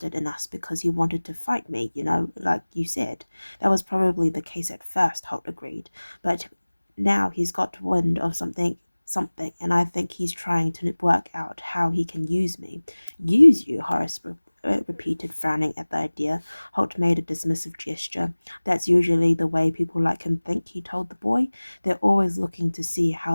in us because he wanted to fight me, like you said. That was probably the case at first, Holt agreed, but now he's got wind of something, and I think he's trying to work out how he can use me." "Use you?" Horace repeated, frowning at the idea. Holt made a dismissive gesture. "That's usually the way people like him think," he told the boy. "They're always looking to see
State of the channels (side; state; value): both; inverted; correlation -1.00